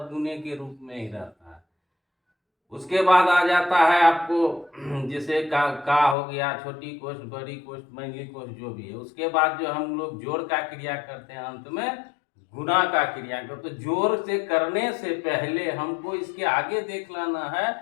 गुने के रूप में ही रहता है। उसके बाद आ जाता है आपको जैसे का हो गया, छोटी कोष्ठ, बड़ी कोष्ठ, मंझली कोष्ठ जो भी है। उसके बाद जो हम लोग जोड़ का क्रिया करते हैं अंत में गुना का क्रिया करते। तो जोड़ से करने से पहले हमको इसके आगे देख लेना है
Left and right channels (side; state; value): right; drops out; at 6.2 s